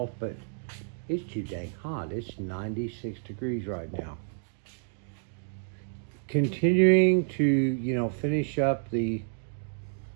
but it's too dang hot. It's 96 degrees right now. Continuing to, finish up the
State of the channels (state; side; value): silent; left; digital silence